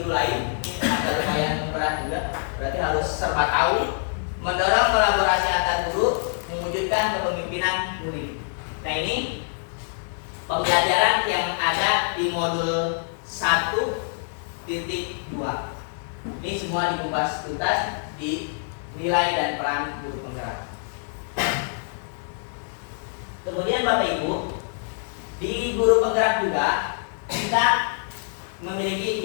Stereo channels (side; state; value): right; silent; digital silence